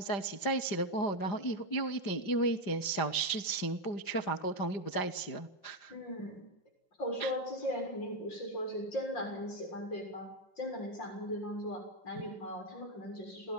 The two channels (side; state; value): right; late; 5.1 ms